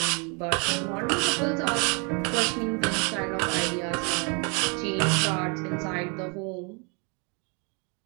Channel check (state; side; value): quieter; left; 34.6 dB